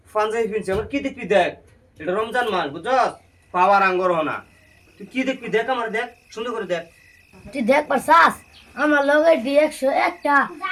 পাঞ্জাবি ফিনছি আমার কি দেখবি দেখ এটা রমজান মাস বুঝছস পাওয়ার আঙ্গর হনা তুই কি দেখবি দেখ আমার দেখ সুন্দর করে দেখ তুই দেখ পারছাস আমার লগে D101টা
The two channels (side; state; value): both; identical; correlation 1.00